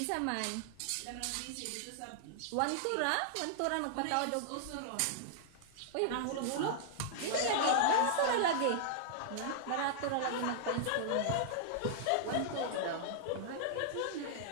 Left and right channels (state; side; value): different; both; correlation -0.01